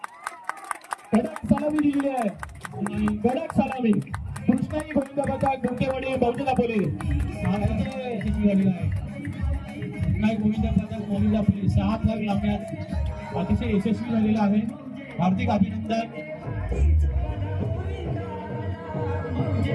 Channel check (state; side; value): identical; both; correlation 1.00